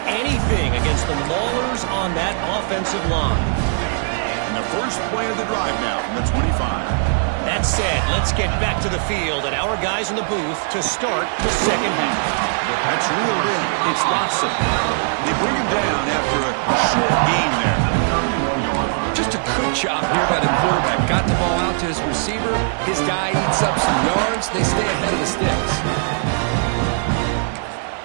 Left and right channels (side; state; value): left; silent; digital silence